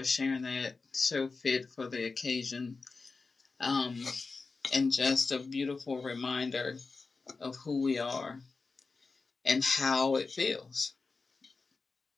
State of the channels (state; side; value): quieter; right; 4.2 dB